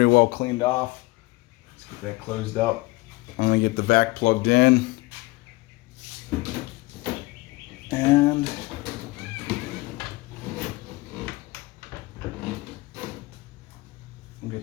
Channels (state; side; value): quieter; right; 22.0 dB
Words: well cleaned off. Let's get that closed up. I'm gonna get the vac plugged in. And we'll